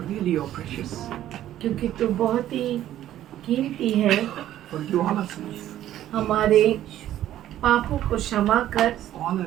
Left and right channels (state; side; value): quieter; left; 12.5 dB